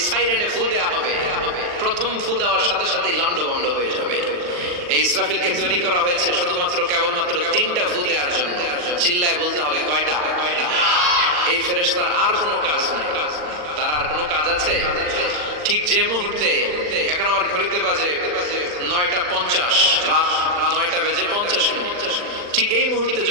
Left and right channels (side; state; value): left; late; 40 ms